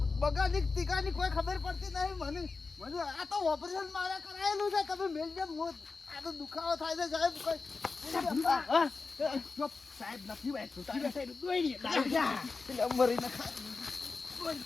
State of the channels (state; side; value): quieter; right; 4.2 dB